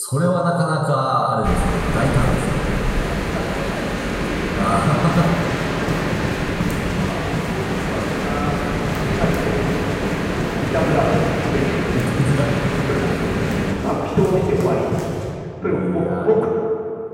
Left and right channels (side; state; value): both; identical; correlation 1.00